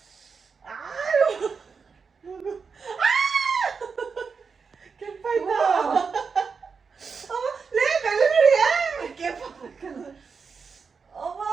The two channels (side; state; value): left; quieter; 5.4 dB